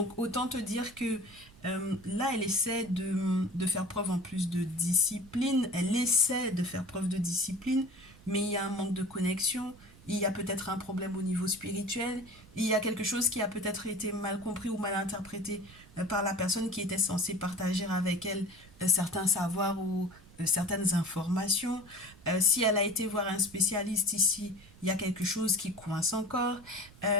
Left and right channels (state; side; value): noise; right; rumble, 22 dB below the sound